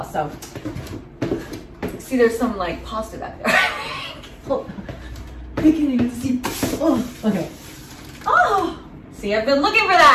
So see, there's some like pasta back there. Oh, I can't even see. Oh, okay. Oh, see, I've been looking for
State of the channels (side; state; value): both; identical; correlation 1.00